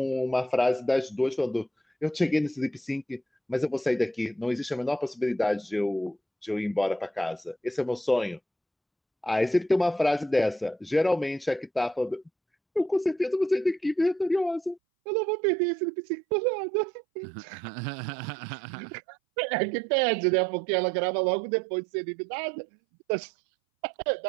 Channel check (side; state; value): left; drops out; at 14.8 s